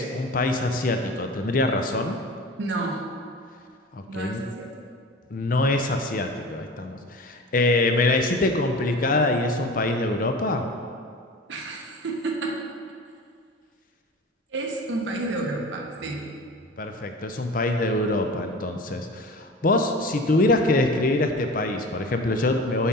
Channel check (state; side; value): normal; both; correlation 0.36